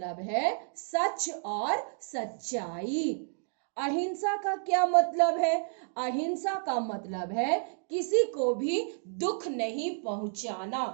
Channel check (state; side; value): silent; left; digital silence